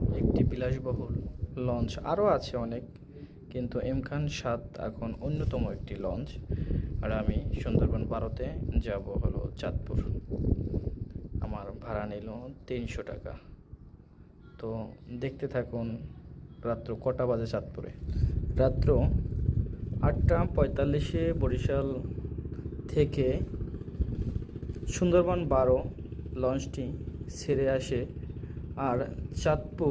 একটি বিলাসবহুল লঞ্চ, আরও আছে অনেক, কিন্তু এম খান সাদ এখন অন্যতম একটি লঞ্চ। আর আমি সুন্দরবন 12-তে যাব হলো চাঁদপুর। আমার ভাড়া নিল 300 টাকা। তো দেখতে থাকুন রাত্র কটা বাজে চাঁদপুরে। রাত্র 8টা 45-এ বরিশাল থেকে সুন্দরবন 12 লঞ্চটি ছেড়ে আসে আর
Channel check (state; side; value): identical; both; correlation 1.00